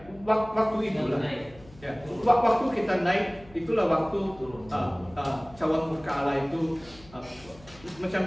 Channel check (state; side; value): noise; left; hum, 23 dB below the sound